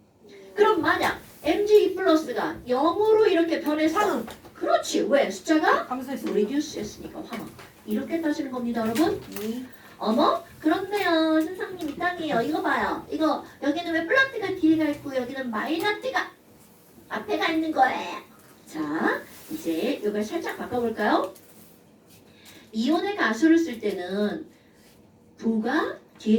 그럼 만약 Mg2 플러스가 0으로 이렇게 변해서 산은 그렇지. 왜? 숫자가 감소했습니다. 리듀스 했으니까 환화. 이렇게 따지는 겁니다, 여러분. 어머? 그렇네요. 선생님 이땅이에요. 이거 봐요. 이거 여기는 왜 플러스가 뒤에가 있고 여기는 마이너스가 앞에가 있는 거예요. 자, 이제 이걸 살짝 바꿔볼까요? 이온의 가수를 쓸 때는 부가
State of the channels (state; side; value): identical; both; correlation 1.00